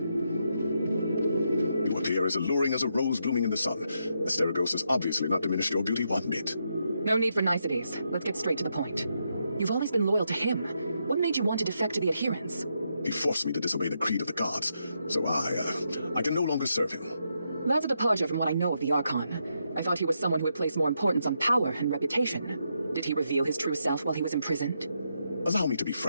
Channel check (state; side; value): inverted; both; correlation -0.81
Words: You appear as alluring as a rose blooming in the sun. Asterigos has obviously not diminished your beauty one bit. No need for niceties. Let's get straight to the point. You've always been loyal to him. What made you want to defect to the adherents? He forced me to disobey the creed of the gods, so I can no longer serve him. That's a departure from what I know of the Archon. I thought he was someone who would place more importance on power and reputation. Did he reveal his true self while he was imprisoned? Allow me to be